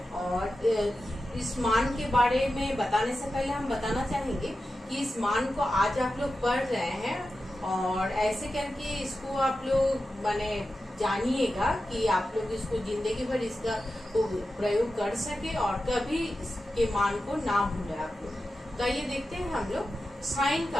और इस मान के बारे में बताने से पहले हम बताना चाहेंगे कि इस मान को आज आप लोग पढ़ रहे हैं और ऐसे करके इसको आप लोग माने जानिएगा कि आप लोग इसको जिंदगी भर इसका प्रयोग कर सके और कभी इसके मान को ना भूले आप लोग। तो आइए देखते हैं हम लोग साइन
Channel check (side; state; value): both; normal; correlation 0.92